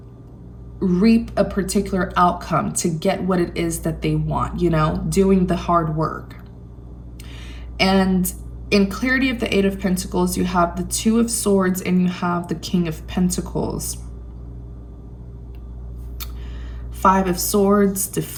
reap a particular outcome, to get what it is that they want, you know, doing the hard work. And in clarity of the Eight of Pentacles, you have the Two of Swords and you have the King of Pentacles. Five of Swords,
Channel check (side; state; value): both; identical; correlation 1.00